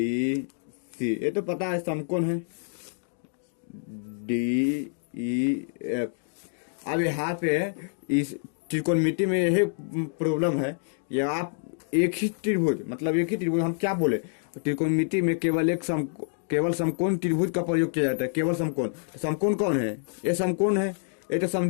सी, ये तो पता है समकोण है, डी ई एफ। अब यहाँ पे इस त्रिकोणमिति में यही प्रॉब्लम है, ये आप एक ही त्रिभुज, मतलब एक ही त्रिभुज, हम क्या बोले, त्रिकोणमिति में केवल एक केवल समकोण त्रिभुज का प्रयोग किया जाता है, केवल समकोण। तो समकोण कौन है, ये समकोण है, ये तो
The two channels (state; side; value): silent; right; digital silence